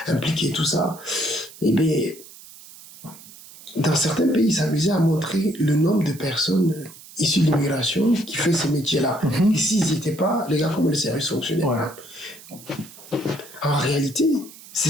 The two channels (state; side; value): noise; right; hiss, 19 dB below the sound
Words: impliqués, tout ça. Et bien, dans certains pays, ils s'amusaient à montrer le nombre de personnes issus de l'immigration qui fait ces métiers-là. Et s'ils n'y étaient pas, les gars, comment le service fonctionnait. En réalité,